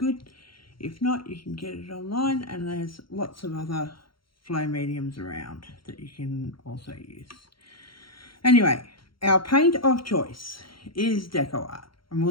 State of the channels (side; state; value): right; late; 0.73 ms